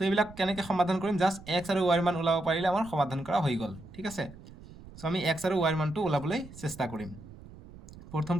এইবিলাক কেনেকৈ সমাধান কৰিম, জাষ্ট এক্স আৰু ৱাইৰ মান ওলাব পাৰিলে আমাৰ সমাধান কৰা হৈ গ'ল। ঠিক আছে, চ' আমি এক্স আৰু ৱাইৰ মানটো ওলাবলৈ চেষ্টা কৰিম।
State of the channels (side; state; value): right; noise; rumble, 18 dB below the sound